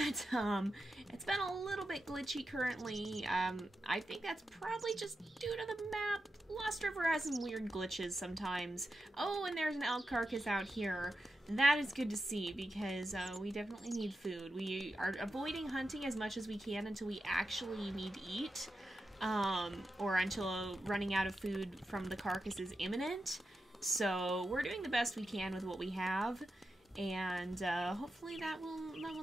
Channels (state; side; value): normal; both; correlation 0.89